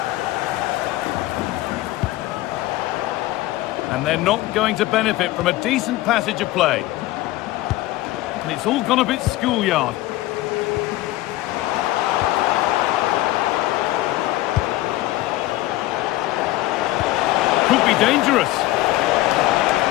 And they're not going to benefit from a decent passage of play. And it's all gone a bit schoolyard. Could be dangerous.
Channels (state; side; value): quieter; right; 17.0 dB